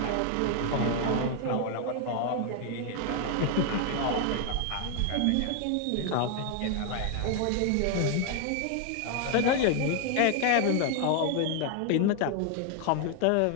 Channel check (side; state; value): both; different; correlation 0.00